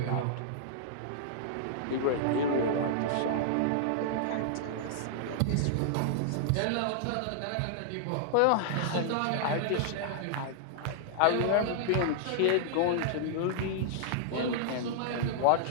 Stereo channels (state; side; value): different; both; correlation -0.01